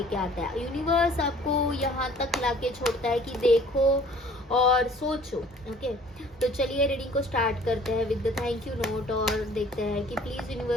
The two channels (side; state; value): both; normal; correlation 0.53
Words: आता है। यूनिवर्स आपको यहाँ तक लाके छोड़ता है कि देखो और सोचो। ओके, तो चलिए रीडिंग को स्टार्ट करते हैं with the thank you note और देखते हैं कि please